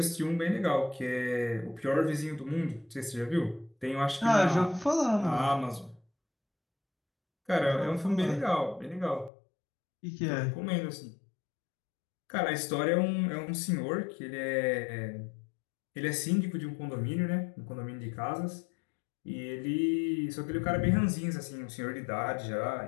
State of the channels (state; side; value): drops out; right; at 9.3 s